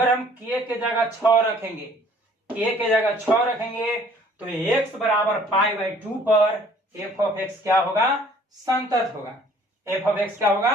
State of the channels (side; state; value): both; normal; correlation 0.56